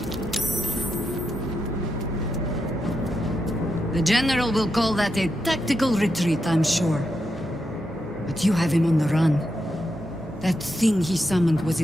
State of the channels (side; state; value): both; normal; correlation 0.85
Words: The General will call that a tactical retreat, I'm sure. But you have him on the run. That thing he summoned was